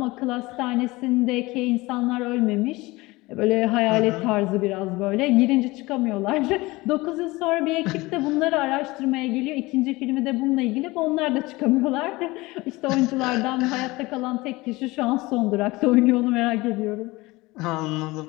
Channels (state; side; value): quieter; right; 21.5 dB